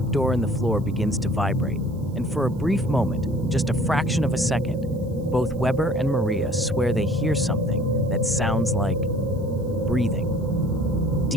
in the floor begins to vibrate, and for a brief moment, just a fraction of a second, both Weber and Maria swear they hear something that sounds like breathing.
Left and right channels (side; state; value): right; noise; hiss, 30 dB below the sound